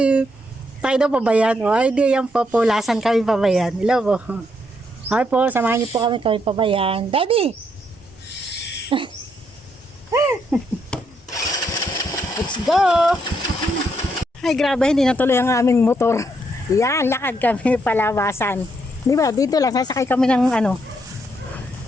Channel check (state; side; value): normal; both; correlation 0.76